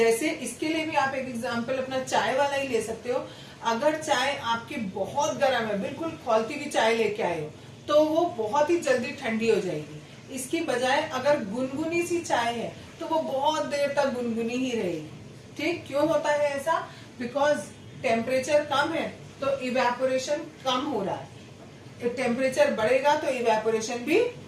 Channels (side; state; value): both; identical; correlation 1.00